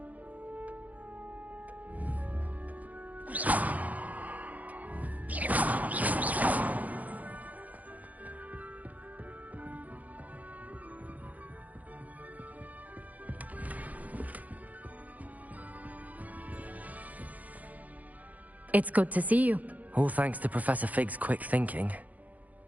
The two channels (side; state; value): left; late; 0.077 ms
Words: It's good to see you. All thanks to Professor Fig's quick thinking.